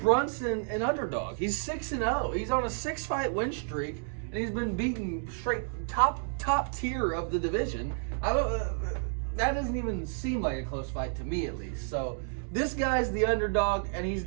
Brunson an underdog? He's 6-0. He's on a 6-fight win streak, and he's been beaten straight top tier of the division. I don't. That doesn't even seem like a close fight to me, at least. So this guy's the underdog, and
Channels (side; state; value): left; silent; 57 dB below the other